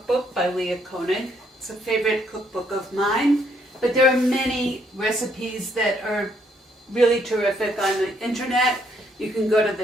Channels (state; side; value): normal; both; correlation 0.70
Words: by Leah Koenig. It's a favorite cookbook of mine, but there are many recipes that are really terrific on the internet. You can go to